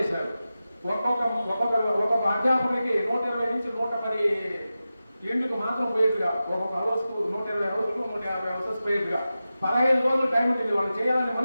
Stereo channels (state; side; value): inverted; both; correlation -0.94